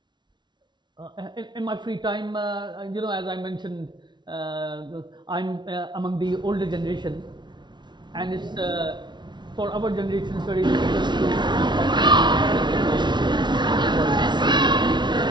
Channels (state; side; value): late; left; 0.22 ms